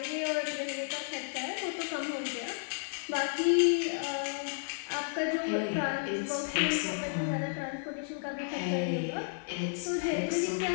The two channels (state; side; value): silent; right; digital silence